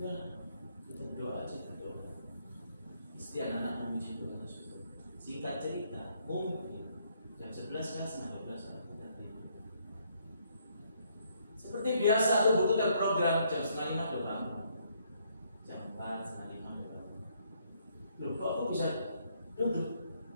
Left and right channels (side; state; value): both; inverted; correlation -0.70